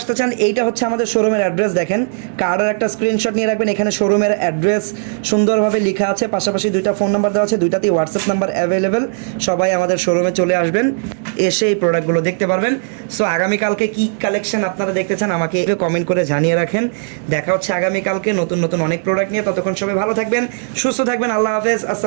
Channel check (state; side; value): silent; left; digital silence